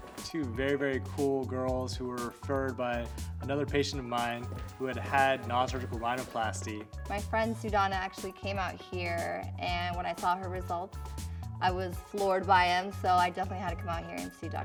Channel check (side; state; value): both; identical; correlation 1.00